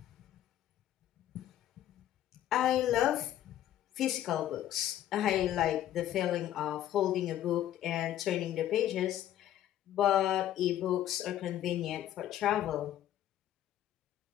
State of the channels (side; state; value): right; quieter; 12.2 dB